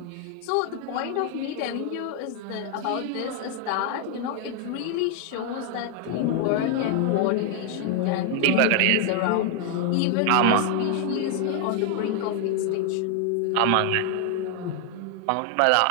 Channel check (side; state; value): both; different; correlation 0.00